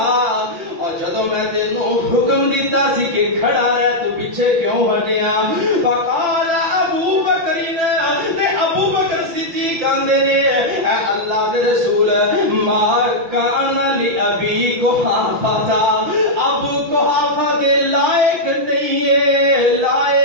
جدو میں تینوں حکم دیتا سی کہ کھڑا رہ تو پیچھے کیوں ہٹیا فقال ابو بکرین تے ابو بکر صدیق کہندے نے اے اللہ دے رسول ما کان لابی قحافہ ابو قحافہ دے لائق نہیں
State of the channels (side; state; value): left; late; 6.0 ms